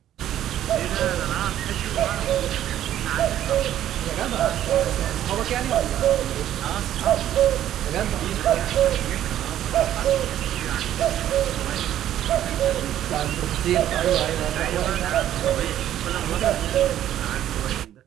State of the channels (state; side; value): quieter; left; 11.8 dB